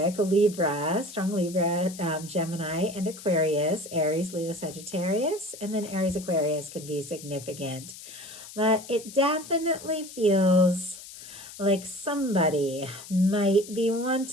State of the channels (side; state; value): left; noise; hiss, 15 dB below the sound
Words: Libra, strong Libra, Gemini, and Aquarius, Aries, Leo, Sagittarius, and then Aries, Aquarius can be significant. But it definitely feels like somebody might be